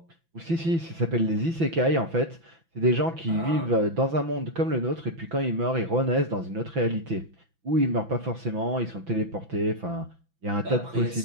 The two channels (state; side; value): late; left; 6.0 ms